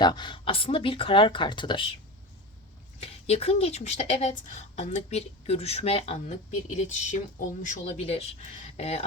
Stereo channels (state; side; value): normal; both; correlation 0.26